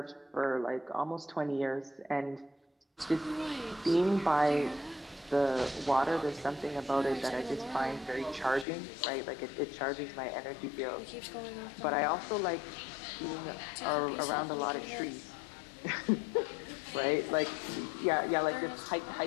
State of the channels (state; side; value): drops out; right; at 8.7 s